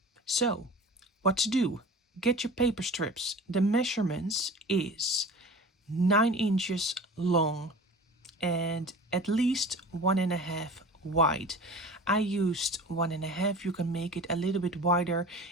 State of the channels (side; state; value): both; normal; correlation 0.38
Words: So, what to do? Get your paper strips. The measurements is 9 inches long and at least 1.5 wide. I used 1.5. You can make it a little bit wider